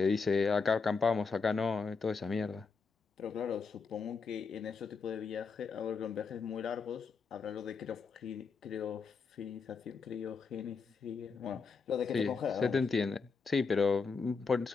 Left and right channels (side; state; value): right; quieter; 5.0 dB